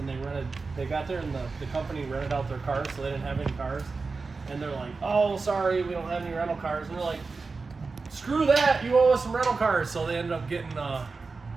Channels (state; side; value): quieter; left; 4.2 dB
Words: they got there, and the company rented out their cars, so they didn't have any cars. And they're like, oh, sorry, we don't have any rental cars. And they're like, screw that, you owe us some rental cars. So they ended up they